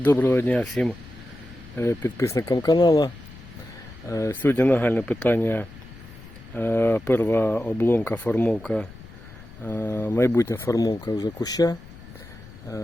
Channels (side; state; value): left; noise; rumble, 18 dB below the sound